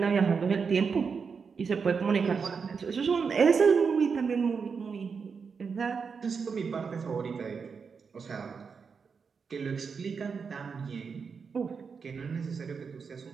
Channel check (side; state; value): left; quieter; 5.7 dB